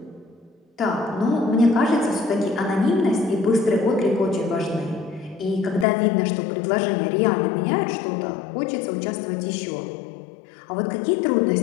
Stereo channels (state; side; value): drops out; right; at 5.9 s